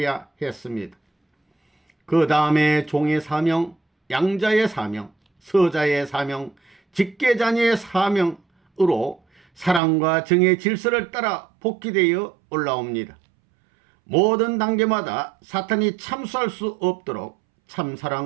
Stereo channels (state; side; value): drops out; left; at 9.8 s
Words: 했습니다. 그 다음에 종의 사명, 양자의 사명, 서자의 사명, 직계자녀의 사명으로 사랑과 정의 질서를 따라 복귀되어 올라옵니다. 모든 단계마다 사탄이 참수할 수 없도록